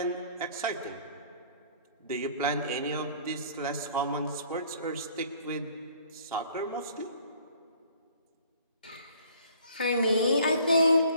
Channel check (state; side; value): inverted; both; correlation -0.55